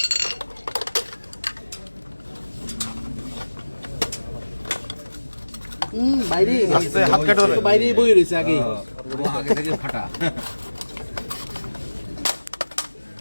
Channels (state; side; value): inverted; both; correlation -1.00